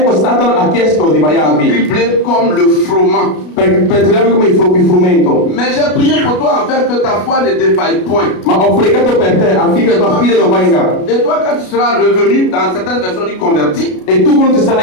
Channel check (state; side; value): late; right; 33 ms